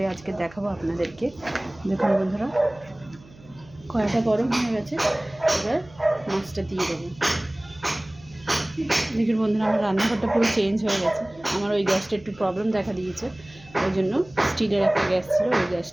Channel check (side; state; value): right; noise; hum, 23 dB below the sound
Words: আজকে দেখাবো আপনাদেরকে। দেখুন বন্ধুরা, কড়াইটা গরম হয়ে গেছে, এবার মাছটা দিয়ে দেবো। দেখুন বন্ধুরা, আমার রান্নাঘরটা পুরো চেঞ্জ হয়ে গেছে। আমার ওই গ্যাসটা একটু প্রবলেম দেখা দিয়েছে, ওই জন্য স্টিলের একটা গ্যাস ছিল, ওই